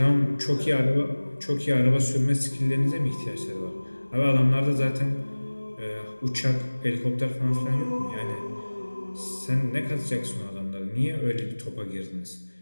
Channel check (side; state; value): both; inverted; correlation -1.00